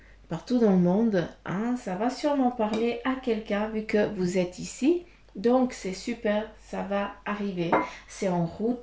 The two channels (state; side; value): identical; both; correlation 1.00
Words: partout dans le monde, hein, ça va sûrement parler à quelqu'un vu que vous êtes ici. Donc, c'est super, ça va arriver. C'est en